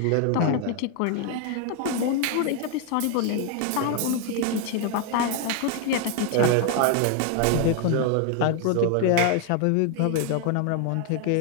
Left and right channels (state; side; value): different; both; correlation 0.01